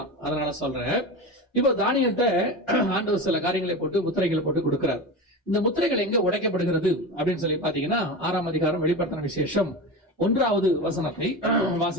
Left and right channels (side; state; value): both; normal; correlation 0.25